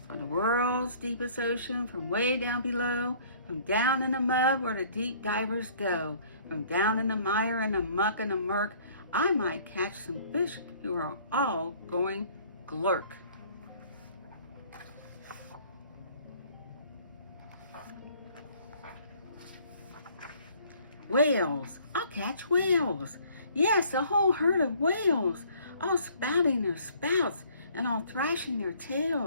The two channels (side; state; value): both; inverted; correlation -0.57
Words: From the world's deepest ocean, from way down below, from down in the mud where the deep divers go, from down in the mire and the muck and the murk, I might catch some fish who are all going glurk. Whales, I'll catch whales. Yes, a whole herd of whales, all spouting their spouts and all thrashing their